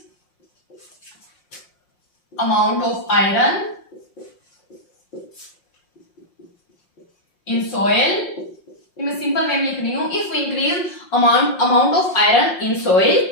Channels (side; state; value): right; late; 5.6 ms